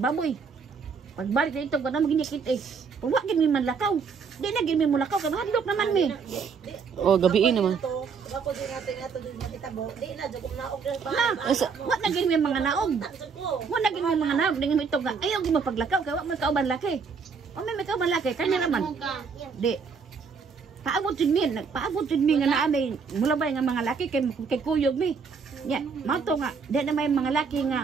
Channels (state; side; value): quieter; left; 5.6 dB